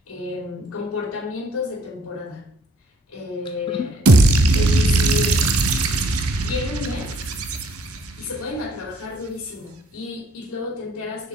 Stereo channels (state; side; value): normal; both; correlation 0.62